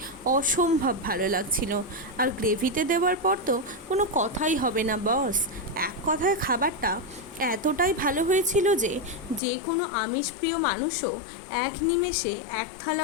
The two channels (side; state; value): right; drops out; at 9.4 s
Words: অসম্ভব ভালো লাগছিল। আর গ্রেভিতে দেওয়ার পর তো কোনো কথাই হবে না বস। এক কথায় খাবারটা এতটাই ভালো হয়েছিল যে যে কোনো আমিষপ্রিয় মানুষও এক নিমেষে এক থালা